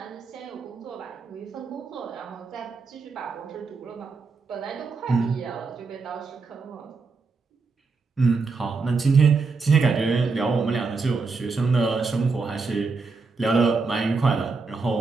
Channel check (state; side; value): quieter; left; 4.4 dB